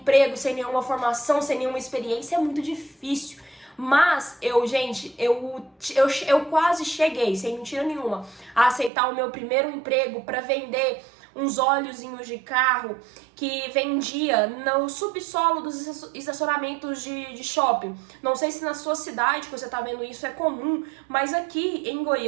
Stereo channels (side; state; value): left; drops out; at 8.9 s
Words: sem nenhuma formação, sem nenhuma experiência. É muito difícil. Mas eu quase cheguei, sem mentira nenhuma, a aceitar o meu primeiro emprego para vender uns óleozinhos de carro que vendia no subsolo dos estacionamentos de shopping. Não sei se na sua cidade que você tá vendo isso é comum, mas aqui em